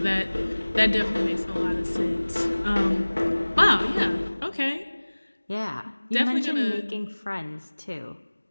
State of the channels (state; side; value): inverted; both; correlation -1.00